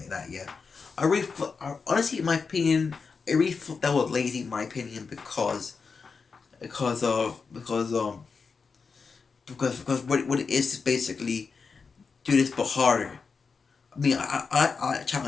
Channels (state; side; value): quieter; right; 5.1 dB